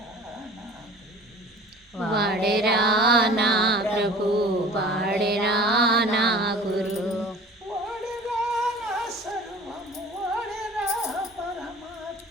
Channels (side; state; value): both; normal; correlation 0.44